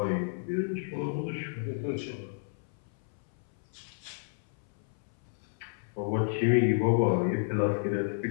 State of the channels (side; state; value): right; silent; 57 dB below the other